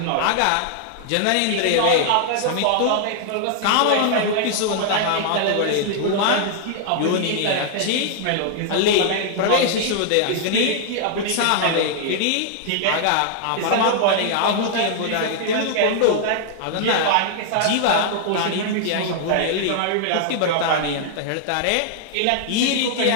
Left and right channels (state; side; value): different; both; correlation 0.00